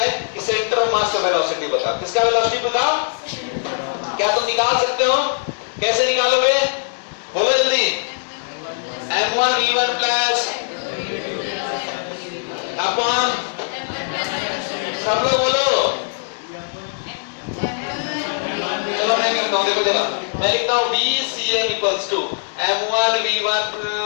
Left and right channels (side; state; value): right; silent; digital silence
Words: कि सेंटर ऑफ मास का वेलोसिटी बता, किसका वेलोसिटी बताओ, क्या तुम निकाल सकते हो, कैसे निकालोगे बोलो जल्दी, m1 v1 प्लस अपॉन, सब लोग बोलो, चलो मैं करता हूं, देखो देखो मैं लिखता हूं VCM equals to m1 v1